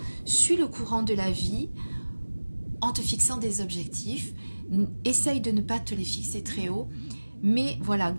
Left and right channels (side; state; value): both; inverted; correlation -1.00